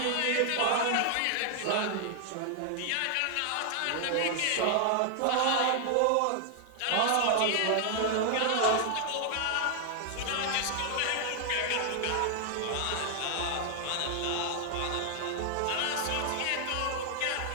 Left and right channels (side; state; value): both; different; correlation 0.00